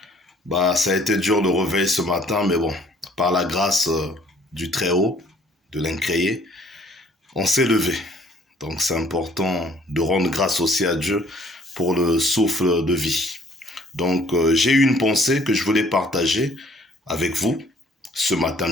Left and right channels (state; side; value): normal; both; correlation 0.58